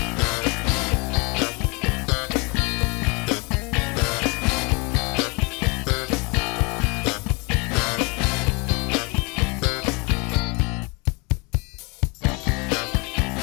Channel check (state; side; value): quieter; right; 29.2 dB